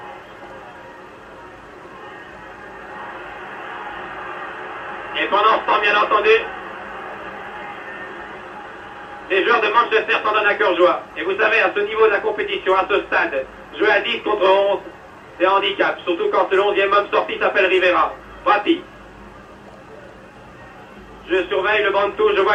Et pendant ce temps, bien entendu, les joueurs de Manchester s'en donnent à cœur joie. Et vous savez, à ce niveau de la compétition, à ce stade, jouer à 10 contre 11, c'est un handicap. Surtout quand le 11e homme sorti s'appelle Rivera. Prati. Je surveille le banc de touche, je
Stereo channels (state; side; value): identical; both; correlation 1.00